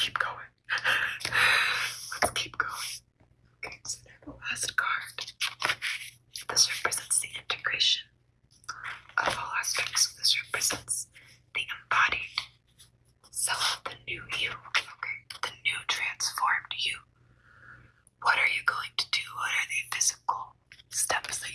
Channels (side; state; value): both; identical; correlation 1.00